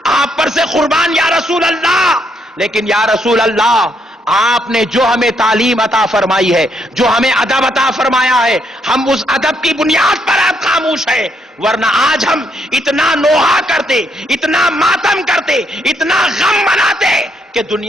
آپ پر سے قربان یا رسول اللہ. لیکن یا رسول اللہ آپ نے جو ہمیں تعلیم عطا فرمائی ہے، جو ہمیں ادب عطا فرمایا ہے، ہم اس ادب کی بنیاد پر آپ خاموش ہے، ورنہ آج ہم اتنا نوحہ کرتے، اتنا ماتم کرتے، اتنا غم مناتے کہ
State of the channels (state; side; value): normal; both; correlation 0.74